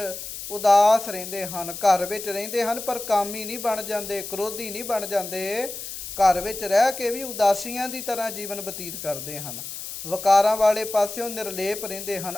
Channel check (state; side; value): noise; left; hiss, 9 dB below the sound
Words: ਉਦਾਸ ਰਹਿੰਦੇ ਹਨ, ਘਰ ਵਿੱਚ ਰਹਿੰਦੇ ਹਨ ਪਰ ਕਾਮੀ ਨਹੀਂ ਬਣ ਜਾਂਦੇ, ਕ੍ਰੋਧੀ ਨਹੀਂ ਬਣ ਜਾਂਦੇ। ਘਰ ਵਿੱਚ ਰਹਿ ਕੇ ਵੀ ਉਦਾਸੀਆਂ ਦੀ ਤਰ੍ਹਾਂ ਜੀਵਨ ਬਤੀਤ ਕਰਦੇ ਹਨ। ਵਕਾਰਾਂ ਵਾਲੇ ਪਾਸਿਓਂ ਨਿਰਲੇਪ ਰਹਿੰਦੇ ਹਨ,